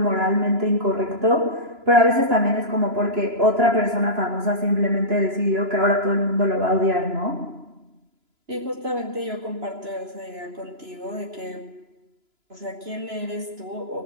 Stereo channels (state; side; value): late; left; 2.9 ms